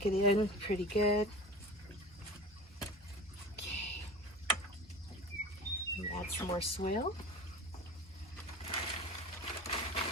it in pretty good. Okay. And add some more soil.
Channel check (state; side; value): normal; both; correlation 0.36